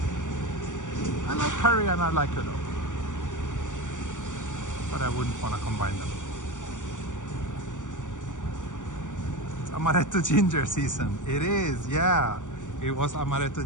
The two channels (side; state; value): right; late; 0.86 ms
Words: I like curry and I like udon, but I wouldn't want to combine them. It's amaretto ginger season. It is, yeah. It was